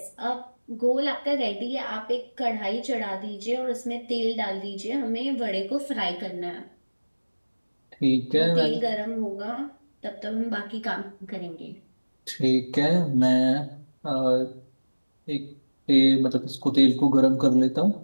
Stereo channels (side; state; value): both; inverted; correlation -1.00